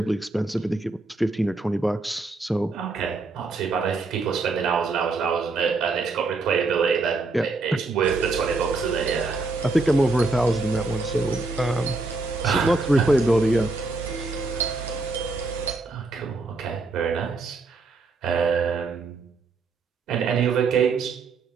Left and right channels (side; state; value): left; quieter; 3.5 dB